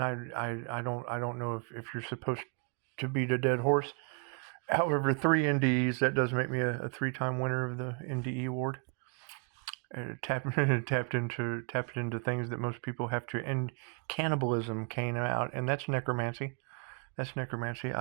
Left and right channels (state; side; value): quieter; left; 36.7 dB